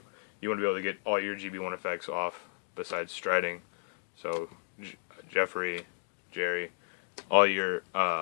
you want to be able to get all your GB1 effects off besides striding. So Jeffrey, Jerry, all your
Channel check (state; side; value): silent; right; digital silence